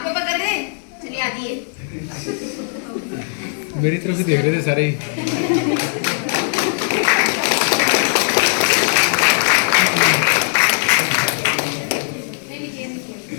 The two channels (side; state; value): right; silent; 67 dB below the other